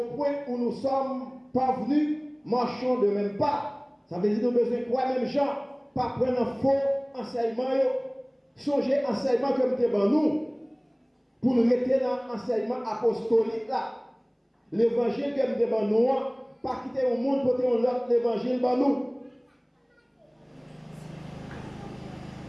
point où nous sommes parvenus, marchons de même pas. Ça veut dire que nous avons besoin de quoi même gens, pas prendre un faux enseignement, songer enseignement comme devant nous, pour nous rester dans l'enseignement apostolique là. L'évangile comme devant nous, pas quitter au monde pour faire l'autre l'évangile devant nous.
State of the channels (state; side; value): identical; both; correlation 1.00